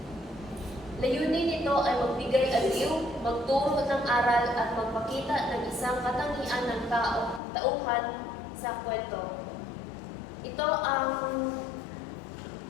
Layunin nito ay magbigay aliw, magturo ng aral at magpakita ng isang katangian ng tauhan sa kwento. Ito ang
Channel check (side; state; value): right; drops out; at 7.4 s